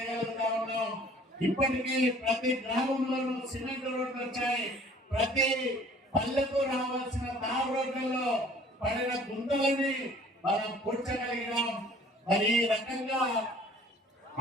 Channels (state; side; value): normal; both; correlation 0.53